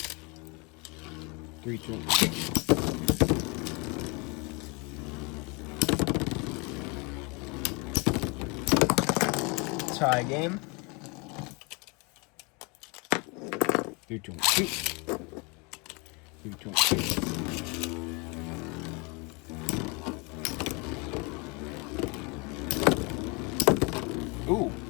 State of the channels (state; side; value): quieter; right; 30.0 dB